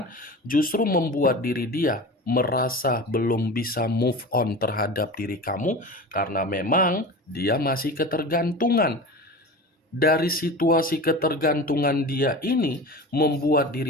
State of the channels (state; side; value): normal; both; correlation 0.32